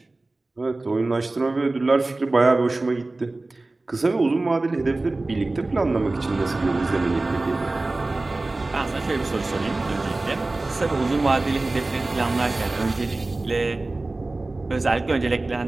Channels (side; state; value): left; quieter; 3.1 dB